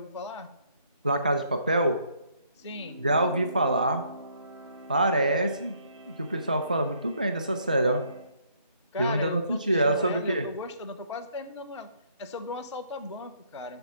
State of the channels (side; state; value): both; inverted; correlation -0.67